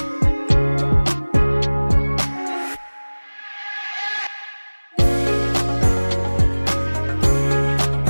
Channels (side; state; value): both; inverted; correlation -1.00